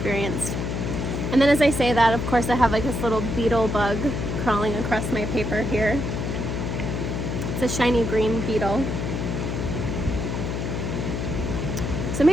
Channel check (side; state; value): left; noise; hum, 2 dB below the sound